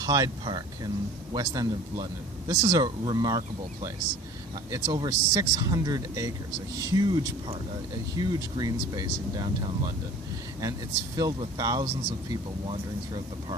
Park in West End of London. This is a remarkable place. It's over 600 acres, a huge park, a huge green space in downtown London. And it's filled with thousands of people wandering throughout the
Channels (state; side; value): normal; both; correlation 0.45